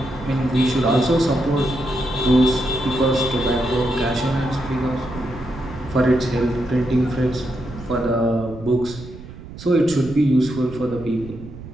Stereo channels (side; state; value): right; noise; rumble, 14 dB below the sound